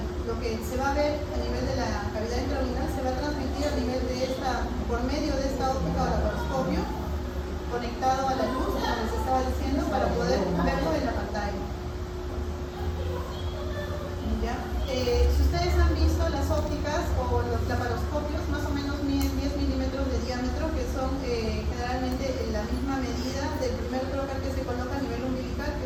Lo que se va a ver a nivel de la cavidad intraabdominal se va a transmitir a nivel de por medio de esta óptica o laparoscopio, conectado a la luz, como les estaba diciendo, para poder verlo en la pantalla. ¿Ya? Si ustedes han visto las ópticas o los laparoscopios, más o menos miden 10 milímetros de diámetro, que son generalmente la misma medida del primer trocar que se coloca a nivel umbilical,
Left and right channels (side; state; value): both; identical; correlation 1.00